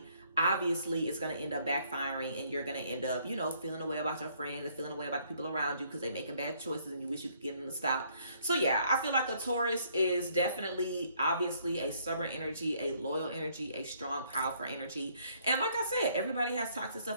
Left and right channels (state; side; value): inverted; both; correlation -0.66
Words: obviously it's going to end up backfiring and you're going to end up, you know, feeling a way about your friends and feeling a way about the people around you because they're making bad choices and you wish you could get them to stop. So yeah, I feel like a Taurus is definitely, obviously, a stubborn energy, a loyal energy, a strong, powerful energy. And like I said, everybody has toxic